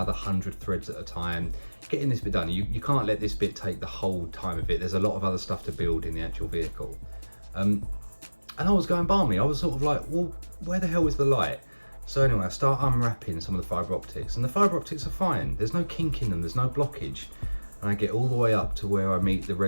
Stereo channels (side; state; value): both; inverted; correlation -1.00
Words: 100 threads at a time, getting this bit done. You can't let this bit take the whole time of it. There's a lot of other stuff to build in the actual vehicle. And I was going balmy. I was sort of like, well, where the hell is the light? So anyway, I start unwrapping some of the fibre optics, and the fibre optics are fine. There's no kink in them, there's no blockage. And I get all the way up to where I meet the